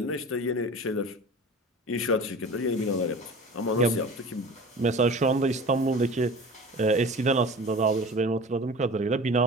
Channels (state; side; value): normal; both; correlation 0.38